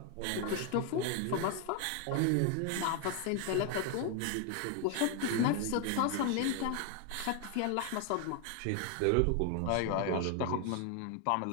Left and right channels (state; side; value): different; both; correlation 0.01